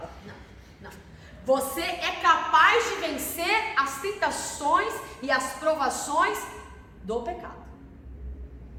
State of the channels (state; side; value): identical; both; correlation 1.00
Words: Não. Você é capaz de vencer as tentações e as provações do pecado.